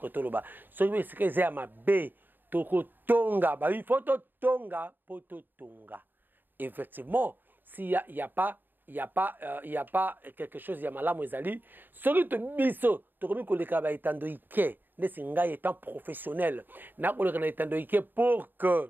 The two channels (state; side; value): late; left; 0.092 ms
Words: tout le bas. Ce qui est que j'ai à ma B, toko tonga, il faut tonga, poto tonga. Effectivement, s'il n'y a pas quelque chose, il y a malamu ezali. Celui de biso, tu remets que le travail étant de Ike, ne singa étant professionnel, n'a pas le étant de Ike pour